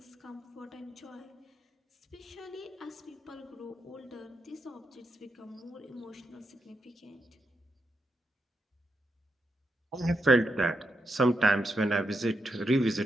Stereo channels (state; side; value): normal; both; correlation 0.83